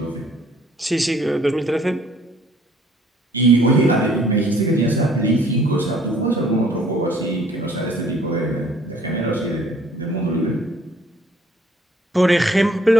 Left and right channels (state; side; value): normal; both; correlation 0.59